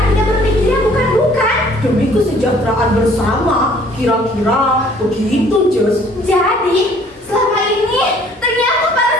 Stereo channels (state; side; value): normal; both; correlation 0.57